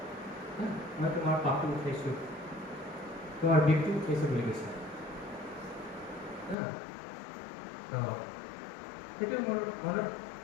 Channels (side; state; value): right; drops out; at 6.6 s